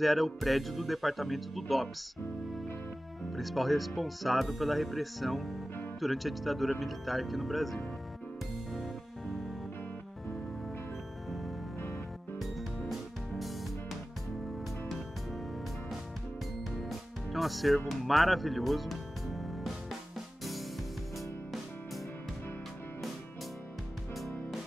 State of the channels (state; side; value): normal; both; correlation 0.96